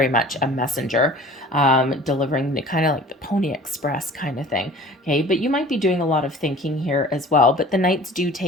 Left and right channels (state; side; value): normal; both; correlation 0.45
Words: much a messenger, delivering the kind of like the Pony Express kind of thing. Okay, but you might be doing a lot of thinking here as well. But the Knights do